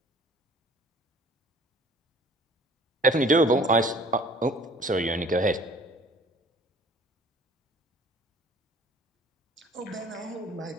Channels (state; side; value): normal; both; correlation 0.52